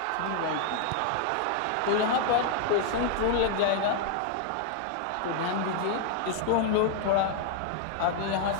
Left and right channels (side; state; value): both; different; correlation 0.00